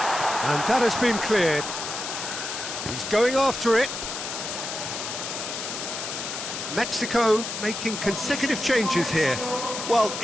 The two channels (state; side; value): noise; left; hiss, 6 dB below the sound